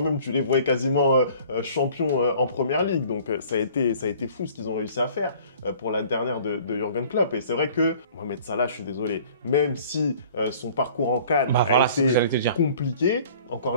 tu les voyais quasiment champions en Première Ligue. Donc ça a été fou ce qu'ils ont réussi à faire pour la dernière de Jürgen Klopp. Et c'est vrai que Mohamed Salah, je suis désolé, même si son parcours en CAN a été compliqué,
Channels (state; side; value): inverted; both; correlation -0.50